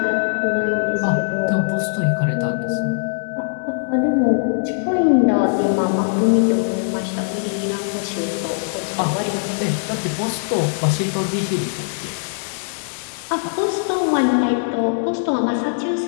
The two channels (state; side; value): silent; right; digital silence